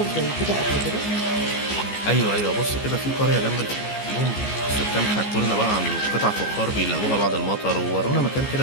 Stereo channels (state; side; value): late; right; 14 ms